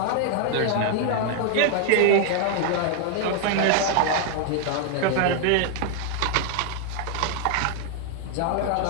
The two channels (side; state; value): both; different; correlation 0.00